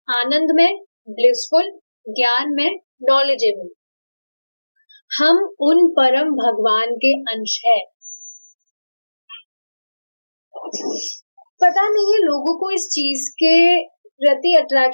आनंद में, ब्लिसफुल, ज्ञान में, नॉलेजेबल। हम उन परम भगवान के अंश है। पता नहीं है लोगों को इस चीज के प्रति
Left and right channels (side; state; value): both; inverted; correlation -1.00